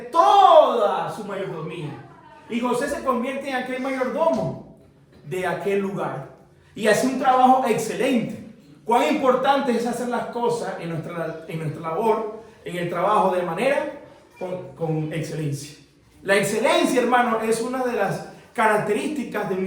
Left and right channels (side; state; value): both; identical; correlation 1.00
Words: toda su mayordomía. Y José se convierte en aquel mayordomo de aquel lugar. Y hace un trabajo excelente. Cuán importante es hacer las cosas en nuestra labor, en el trabajo de manera con excelencia. La excelencia, hermano, es una de las características de un